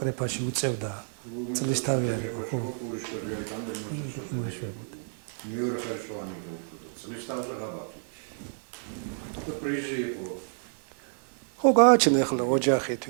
უწევდა წლის თავი არ იყო, ხო. მეორე ხარშოვანი იყო, წლის თავზე ღაბაღი. და პრიზი იყო. ხო, გააჩნდა ახლა ოჯახი,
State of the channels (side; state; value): left; silent; digital silence